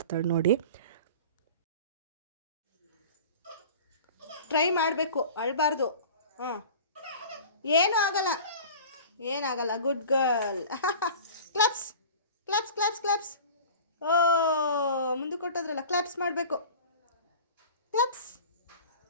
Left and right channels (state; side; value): inverted; both; correlation -0.39